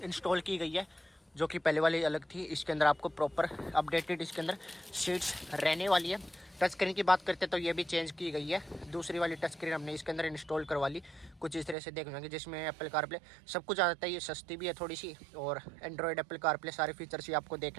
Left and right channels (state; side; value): drops out; left; at 11.8 s